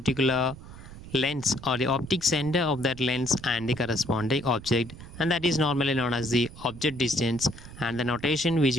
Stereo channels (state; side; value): noise; right; rumble, 15 dB below the sound